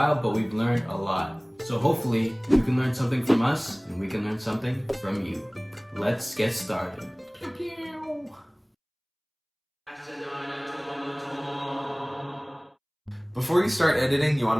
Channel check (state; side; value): identical; both; correlation 1.00